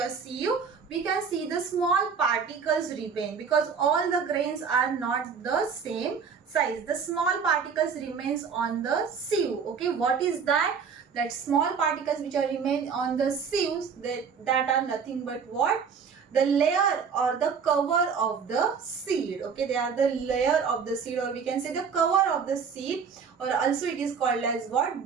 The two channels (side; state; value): left; quieter; 6.2 dB